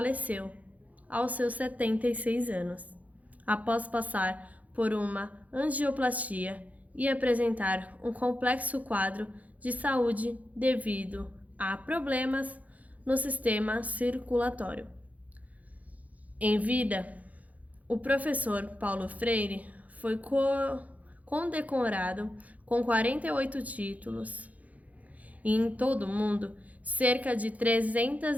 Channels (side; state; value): left; late; 0.073 ms